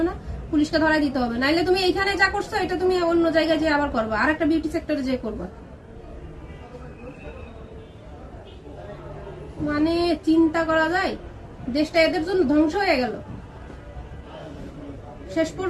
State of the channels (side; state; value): both; identical; correlation 1.00